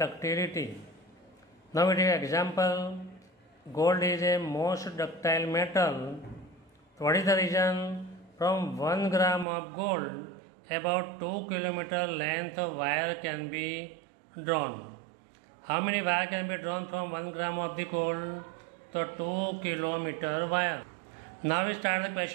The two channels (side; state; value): left; drops out; at 9.5 s